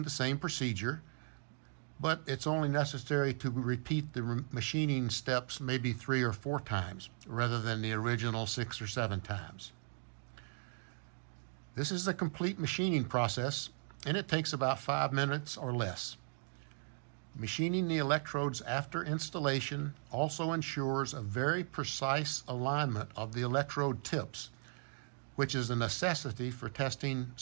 the same procedure, but it's only necessary to repeat the machining steps maybe 3 or 4 times rather than the original 6 or 7 times. This is the complete machining process, and it takes about 5 minutes or less. Machining the electrodes after installation also ensures a very precise alignment of the electrode tips, which is a necessity for testing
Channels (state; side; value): silent; left; 53 dB below the other